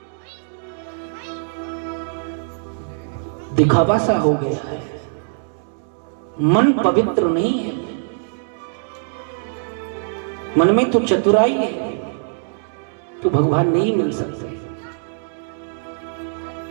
दिखावा सा हो गया है, मन पवित्र नहीं है। मन में तो चतुराई है तो भगवान नहीं मिल सकते।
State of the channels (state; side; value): silent; left; digital silence